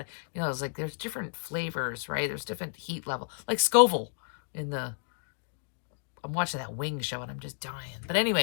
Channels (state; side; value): silent; right; 57 dB below the other